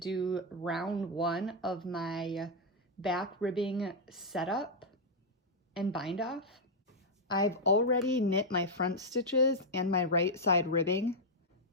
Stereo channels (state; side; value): normal; both; correlation -0.03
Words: round one of my back ribbing setup and bind off. I've already knit my front stitches and my right side ribbing.